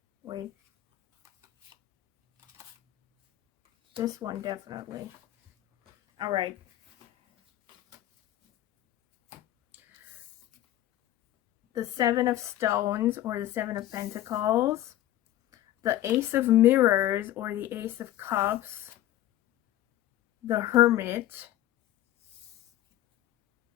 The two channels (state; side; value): quieter; right; 14.0 dB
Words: wait. This one definitely. All right. The Seven of Stones, or the Seven of Pentacles. The Ace of Mirrors, or the Ace of Cups. The Hermit.